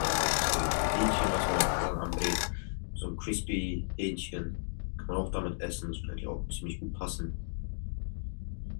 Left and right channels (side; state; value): right; silent; digital silence